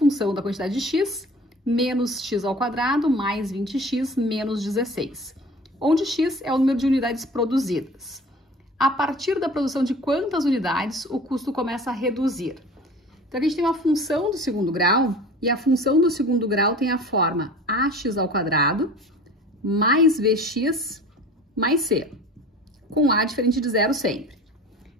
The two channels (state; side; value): normal; both; correlation 0.41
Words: da quantidade de x menos x ao quadrado mais 20x menos 16, onde x é o número de unidades produzidas. A partir da produção de quantas unidades o custo começa a reduzir? Então, aqui a gente tem uma função do segundo grau, e a função do segundo grau tem a forma ax ao quadrado mais vx mais c, com a diferente de zero sempre.